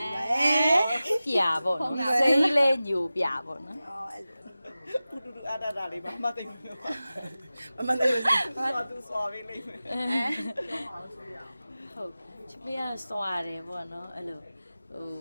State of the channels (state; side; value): inverted; both; correlation -0.96